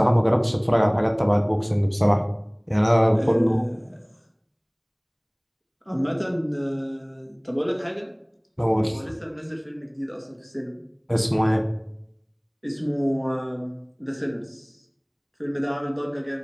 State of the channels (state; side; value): identical; both; correlation 1.00